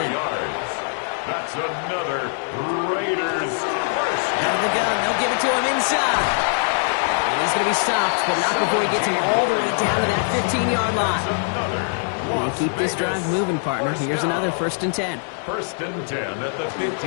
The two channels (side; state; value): right; silent; 64 dB below the other